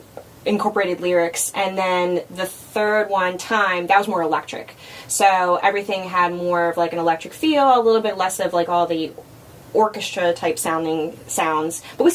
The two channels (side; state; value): both; identical; correlation 1.00